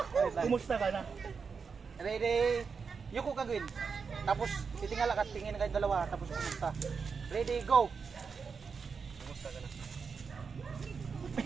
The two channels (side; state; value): left; quieter; 5.5 dB